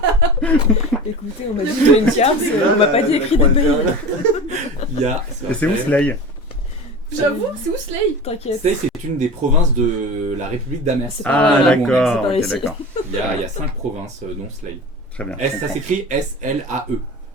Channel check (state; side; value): normal; both; correlation 0.33